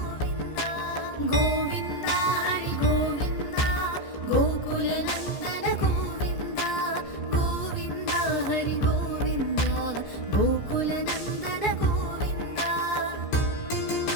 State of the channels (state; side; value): late; right; 14 ms